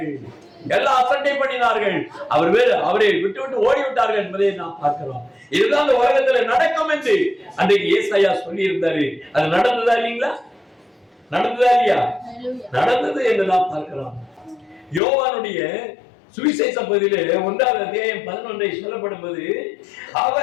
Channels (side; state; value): right; drops out; at 15.0 s